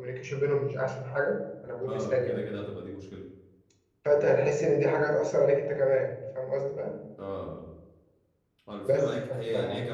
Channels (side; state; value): both; identical; correlation 1.00